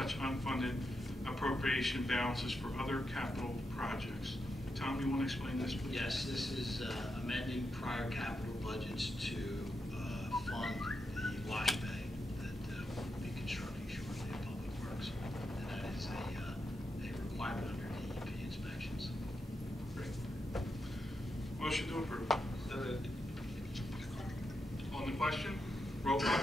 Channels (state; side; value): normal; both; correlation 0.86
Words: unfunded appropriation balances for other capital projects. Tom, you want to explain this, please? Yes, this is amending prior capital budgets to fund the wash bay that we'll be constructing shortly at Public Works. And that is a requirement under DEP inspections. Great. Motion to approve. So moved. On the question, roll call,